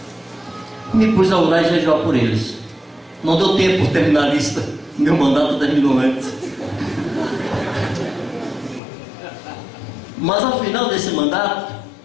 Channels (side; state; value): right; drops out; at 8.8 s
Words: Me pus a orar e jejuar por eles. Não deu tempo de terminar a lista. Meu mandato terminou antes. Mas ao final desse mandato,